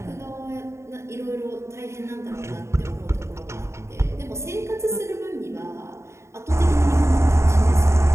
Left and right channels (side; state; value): left; late; 0.13 ms